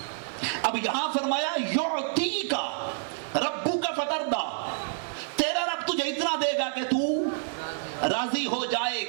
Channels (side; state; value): left; silent; 56 dB below the other